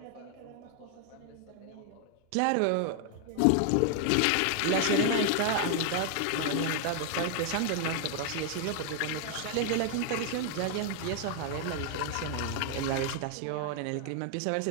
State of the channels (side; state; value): both; different; correlation 0.00